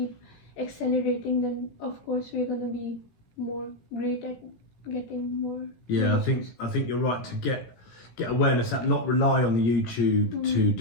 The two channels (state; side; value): late; right; 17 ms